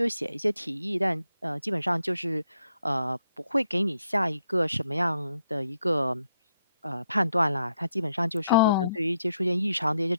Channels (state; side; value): inverted; both; correlation -0.77